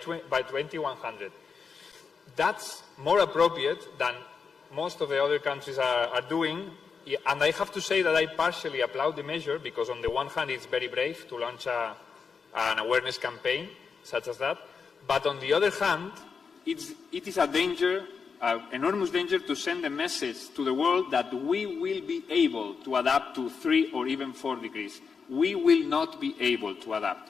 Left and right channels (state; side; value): quieter; right; 5.6 dB